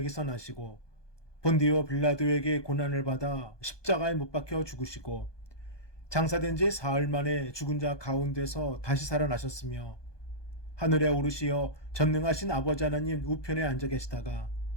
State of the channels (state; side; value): late; right; 1.2 ms